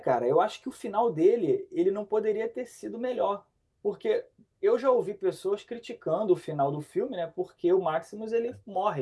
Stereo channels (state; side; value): identical; both; correlation 1.00